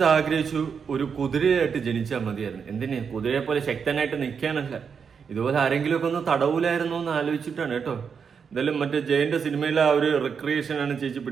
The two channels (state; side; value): quieter; left; 6.4 dB